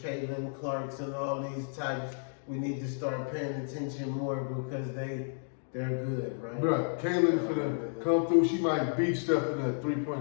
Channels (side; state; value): right; silent; digital silence